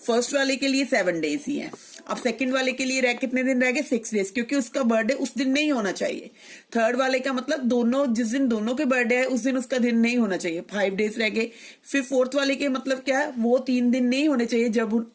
First वाले के लिए 7 डेज ही है. अब सेकंड वाले के लिए कितने दिन रह गए? 6 डेज, क्योंकि उसका बर्थडे उस दिन नहीं होना चाहिए. थर्ड वाले का मतलब दोनों जिस दिन दोनों के बर्थडे है उस दिन उसका दिन नहीं होना चाहिए. 5 डेज रह गए. फिर फोर्थ वाले के मतलब क्या है? वो 3 दिन नहीं होने चाहिए जब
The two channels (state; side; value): identical; both; correlation 1.00